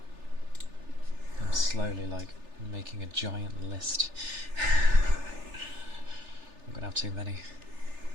I'm slowly, like, making a giant list. I'm gonna have too many.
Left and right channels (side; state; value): left; late; 3.4 ms